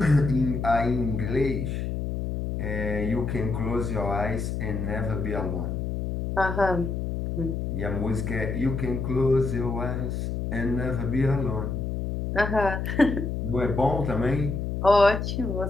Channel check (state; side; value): noise; left; hum, 3 dB below the sound